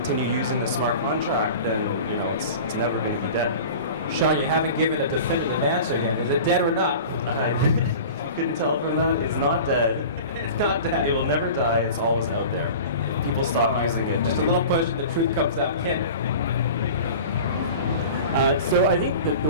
continue using the smart contract, then it's never going to be dead. Sean, you haven't given a definitive answer yet. Is it dead or not? I didn't tell them that. It's not dead. It's not dead. It will never die. It's always out there. People stop using it. Just a little push and the truth comes out. Kyn. So I think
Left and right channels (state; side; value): inverted; both; correlation -0.37